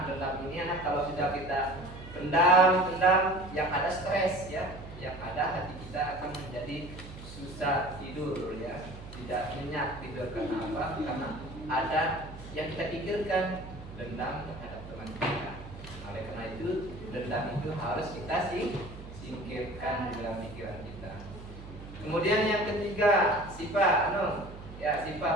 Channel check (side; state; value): right; noise; hum, 14 dB below the sound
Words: dendam ini anak kalau sudah kita pendam yang ada stres ya, yang ada hati kita akan menjadi susah tidur ya, tidak nyenyak tidur. Karena apa? Karena ada yang kita pikirkan, dendam terhadap teman kita. Oleh karena itu dendam itu harus kita singkirkan di dalam pikiran kita. Kemudian yang ketiga, sifat sifat